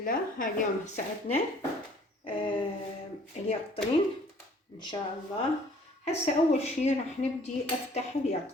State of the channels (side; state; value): both; normal; correlation 0.56